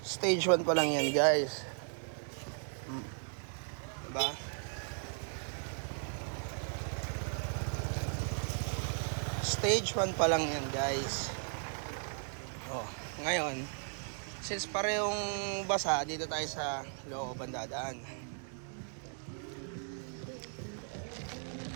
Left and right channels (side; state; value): left; silent; 54 dB below the other